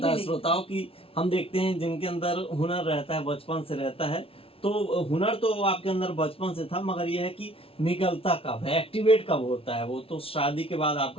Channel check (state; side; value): late; right; 0.27 ms